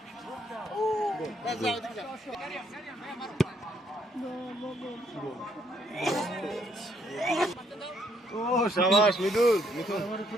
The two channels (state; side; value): normal; both; correlation 0.70